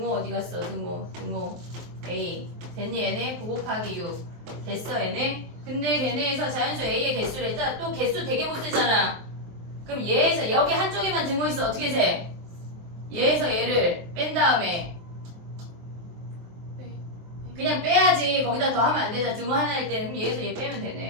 어디 갔어? 등호 A 됐니 얘네? 9 곱하기 6 됐어 얘네? 근데 걔네에서 자연수 A의 개수를 했다. 또 개수 되게 못 세잖아. 그럼 얘에서 여기 한쪽에만 등호 있어. 어떻게 세? 얘에서 얘를 뺀 다음에 그냥 빼야지. 거기다 더 하면 안 되잖아. 등호 하나일 때는. 그럼 얘에서 얘 빼면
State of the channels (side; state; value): left; late; 23 ms